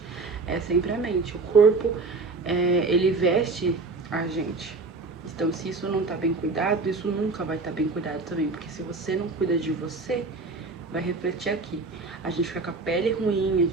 é sempre a mente. O corpo, ele veste a gente. Então, se isso não tá bem cuidado, isso nunca vai estar bem cuidado também. Porque se você não cuida de você, vai refletir aqui. A gente fica com a pele ruim, a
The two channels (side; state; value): left; quieter; 3.8 dB